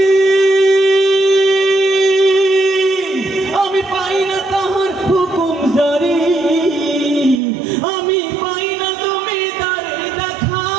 আমি পাই না তাহার হুকুম জারি, আমি পাই না জমিদারের দেখা,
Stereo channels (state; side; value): drops out; left; at 7.4 s